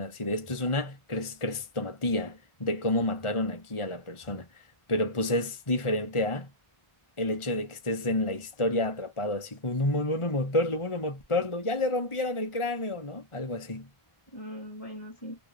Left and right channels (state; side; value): late; right; 1.4 ms